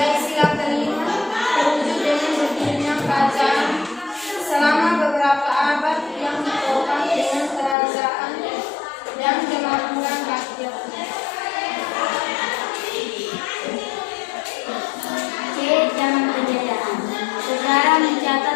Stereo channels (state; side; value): drops out; right; at 7.8 s